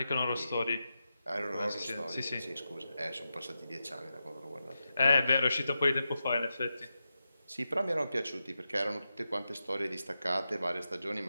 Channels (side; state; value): both; inverted; correlation -0.90